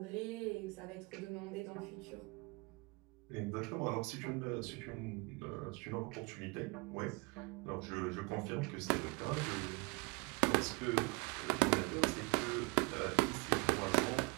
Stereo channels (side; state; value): left; quieter; 28.2 dB